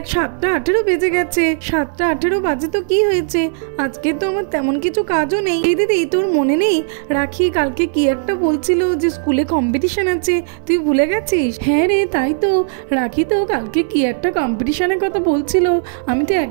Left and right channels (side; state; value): left; silent; 61 dB below the other